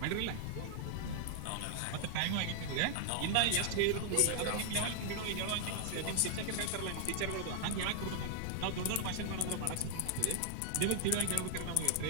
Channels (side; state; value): both; different; correlation 0.00